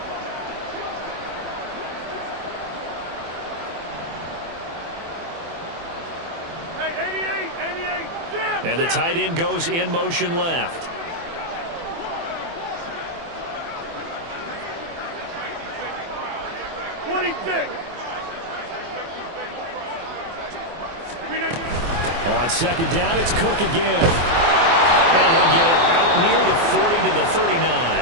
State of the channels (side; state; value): left; late; 24 ms